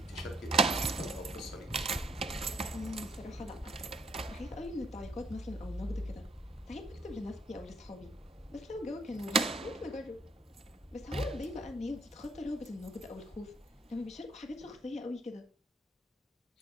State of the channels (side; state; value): both; normal; correlation 0.68